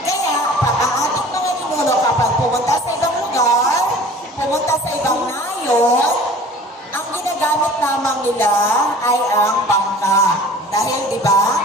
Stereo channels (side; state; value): both; normal; correlation 0.46